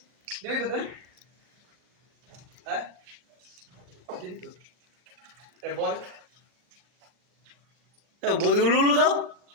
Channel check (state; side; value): late; left; 39 ms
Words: দিবি তো দেন হ্যাঁ দিবি তো এ বল এ বদি উলুলু দাও